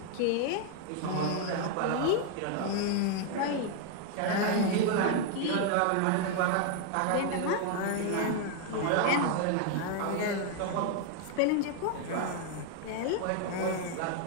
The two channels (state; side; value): different; both; correlation 0.00